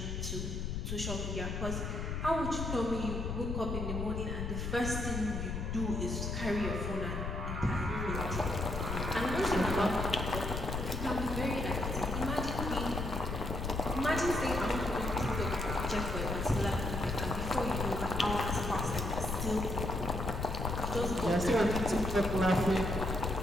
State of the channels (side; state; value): left; noise; rumble, 3 dB below the sound